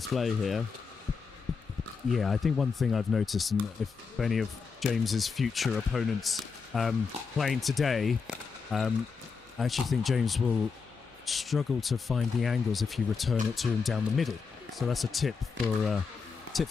here. Yeah, I think one thing I've noticed, and if any of James's future opponents playing today, I actually think James will struggle to find the angles if you return it to him down the middle. So that's a tip for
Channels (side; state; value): right; quieter; 5.2 dB